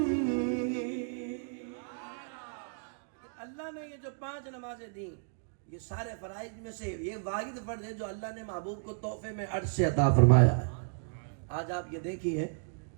اللہ نے یہ جو 5 نمازیں دیں یہ سارے فرائض میں سے یہ واحد فرض ہے جو اللہ نے محبوب کو تحفے میں عرش سے عطا فرمایا ہے۔ آج آپ یہ دیکھیے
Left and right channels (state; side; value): silent; left; digital silence